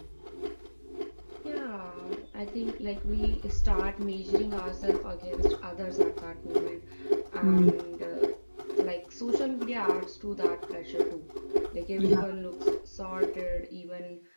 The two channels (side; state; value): both; inverted; correlation -1.00